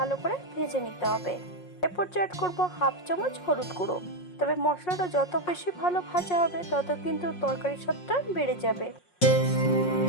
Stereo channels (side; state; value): right; late; 5.5 ms